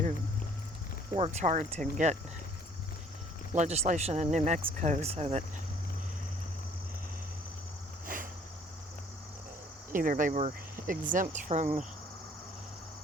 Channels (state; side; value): normal; both; correlation 0.57